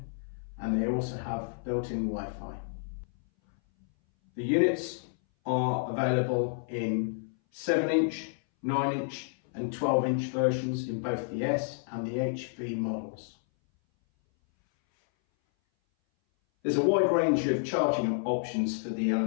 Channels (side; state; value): right; silent; 58 dB below the other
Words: and they also have built-in Wi-Fi. The units are available in 7-inch, 9-inch and 12-inch versions in both the S and the HV models. There's a wide range of charting options for the